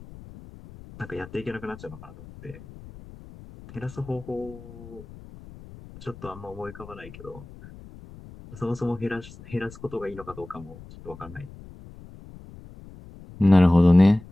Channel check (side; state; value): left; noise; rumble, 18 dB below the sound